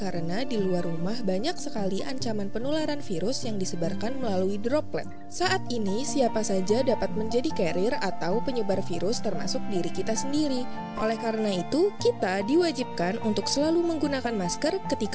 di luar rumah banyak sekali ancaman penularan virus yang disebarkan melalui droplet. Saat ini, siapa saja dapat menjadi carrier atau penyebar virus termasuk diri kita sendiri. Oleh karena itu, kita diwajibkan untuk selalu menggunakan masker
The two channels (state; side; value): identical; both; correlation 1.00